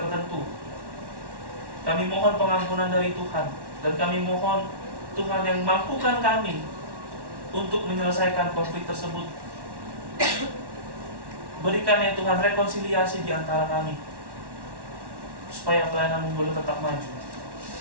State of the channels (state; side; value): late; left; 1.1 ms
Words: kami mohon pengampunan dari Tuhan, dan kami mohon Tuhan yang mampukan kami untuk menyelesaikan konflik tersebut. Berikan ya Tuhan rekonsiliasi di antara kami, supaya pelayanan boleh tetap maju.